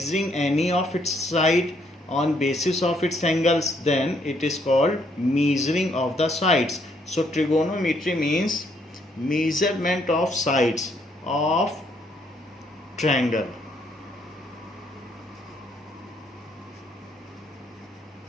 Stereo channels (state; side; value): normal; both; correlation 0.70